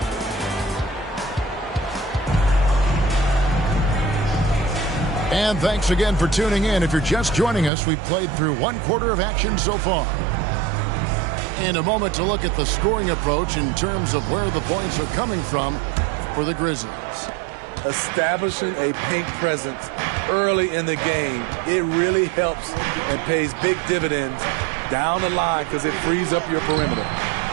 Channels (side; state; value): left; drops out; at 7.7 s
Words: And thanks again for tuning in. If you're just joining us, we've played through 1 quarter of action so far. And a moment to look at the scoring approach in terms of where the points are coming from for the Grizzlies. Establishing a paint presence early in the game, it really helps and pays big dividends down the line because it frees up your perimeter.